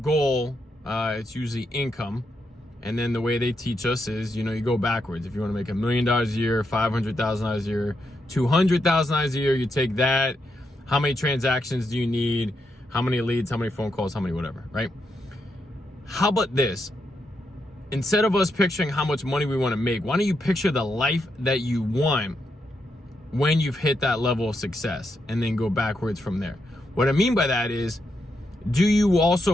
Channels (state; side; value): normal; both; correlation 0.82